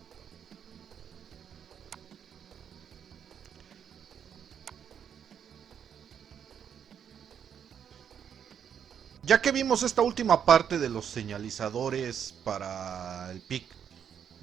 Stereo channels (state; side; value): quieter; left; 8.3 dB